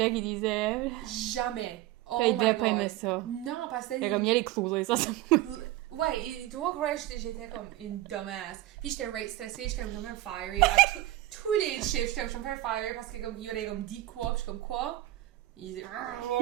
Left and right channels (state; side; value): quieter; left; 15.8 dB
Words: qu'il disait. jamais. Oh Il my devait pas god. aimer ça. Non, parce que Fait comme, il y a les clous, là, ça. ouais, il doit croire que j'étais comme une dumbass. Puis j'étais right stressée, j'étais comme je me faire fiery. À tous les chiffres, j'étais comme je me faire fiery parce que comme il aurait comme dit quoi, puis je suis comme quoi. Il disait